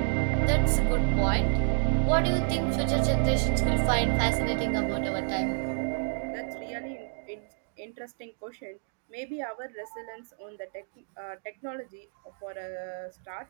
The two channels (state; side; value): silent; left; digital silence